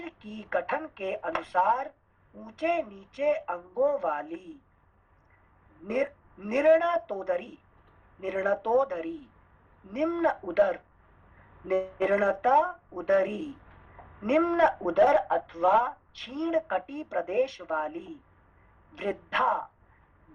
की गठन के अनुसार ऊंचे नीचे अंगों वाली। निर्णतोदरी, निम्न उदर, निर्णता उदरी, निम्न उदर अथवा क्षीण कटी प्रदेश वाली। वृद्धा,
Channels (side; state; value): both; identical; correlation 1.00